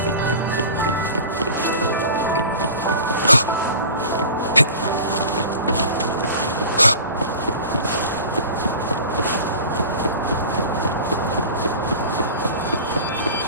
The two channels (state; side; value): inverted; both; correlation -0.37